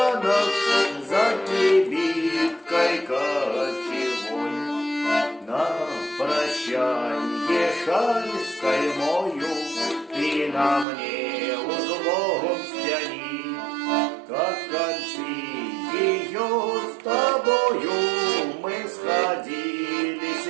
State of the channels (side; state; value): left; drops out; at 10.9 s